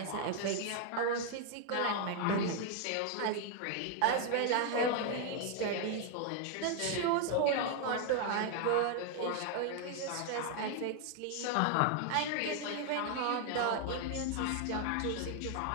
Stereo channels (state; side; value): different; both; correlation 0.00